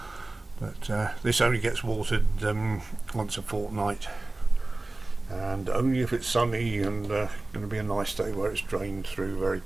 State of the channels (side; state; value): left; quieter; 3.0 dB